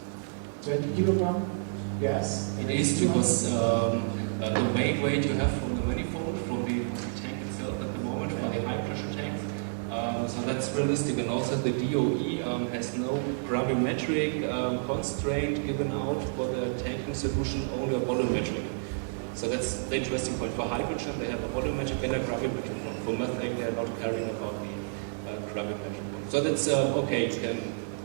20 kilogram gas? It is because the main weight you have from the manifold, from the tank itself at the moment, for the high pressure tanks. So that's realistic, and also the DOE has no gravimetric constraint given out for the tanking solution, only a volumetric. So that's the interesting point. For hydrogen, they have a volumetric and a gravimetric one. For methane, they are not caring about the gravimetric one. So that's okay, you can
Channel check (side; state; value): left; silent; digital silence